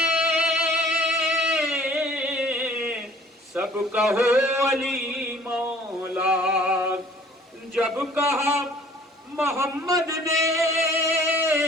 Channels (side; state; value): both; normal; correlation 0.53